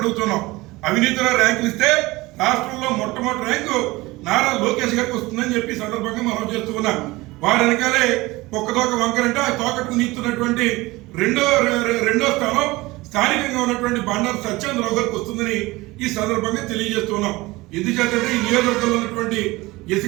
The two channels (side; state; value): left; quieter; 20.9 dB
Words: అడుగుతున్నాం. అవినీతిలో ర్యాంకులు ఇస్తే రాష్ట్రంలో మొట్టమొదటి ర్యాంకు నారా లోకేష్ గారికి వస్తుందని చెప్పి సందర్భంగా మనం చేస్తూ ఉన్నాం. వారి వెనకాలే ఒక్కదోక వంకరంటే ఆ తోకకు నీస్తున్నటువంటి రెండో స్థానం స్థానికంగా ఉన్నటువంటి బండారు సత్యేంద్రరావు గారికి వస్తుందని ఈ సందర్భంగా తెలియజేస్తున్నాం. ఎందుకంటే ఈ నియోజకవర్గంలో ఉన్నటువంటి